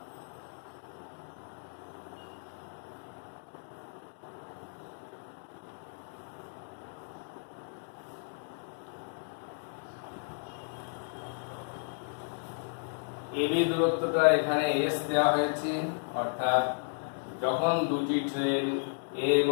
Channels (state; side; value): silent; right; digital silence